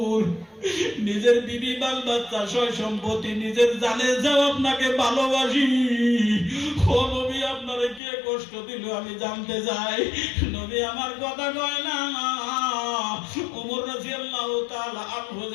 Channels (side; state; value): right; drops out; at 8.0 s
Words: নিজের বিবি বাল বাচ্চা সয় সম্পত্তি নিজের জানে যাও আপনাকে ভালোবাসি, ও নবী আপনারে কে কষ্ট দিল আমি জানতে চাই। নবী আমার কথা কয় না। ওমর রাদিয়াল্লাহু তাআলা আনহু